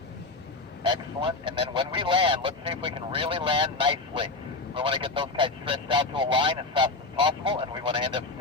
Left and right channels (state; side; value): quieter; right; 3.4 dB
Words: Excellent. And then when we land, let's see if we can really land nicely. We want to get those kites stretched out to a line as fast as possible, and we want to end up